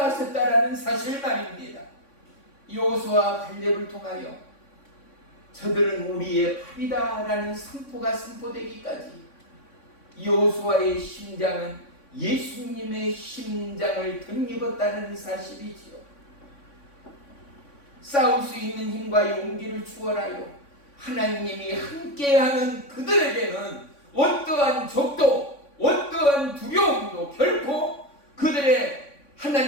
사실 말입니다. 여호수아와 갈렙을 통하여 저들은 우리의 밥이다라는 선포가 선포되기까지 여호수아의 심장은 예수님의 심장을 덧입었다는 사실이지요. 싸울 수 있는 힘과 용기를 주어라요. 하나님이 함께하는 그들에게는 어떠한 적도 어떠한 두려움도 결코 그들의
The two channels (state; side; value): late; right; 3.5 ms